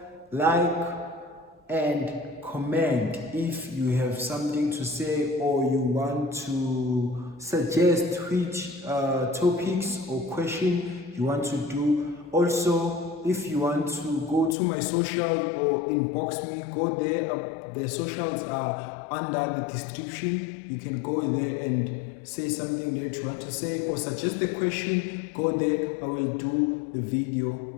like, and comment if you have something to say or you want to suggest which topics or question you want to do. Also, if you want to go to my social or inbox me, go there. The socials are under the description. You can go there and say something that you want to say or suggest a question. Go there. I will do the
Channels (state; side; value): drops out; right; at 14.6 s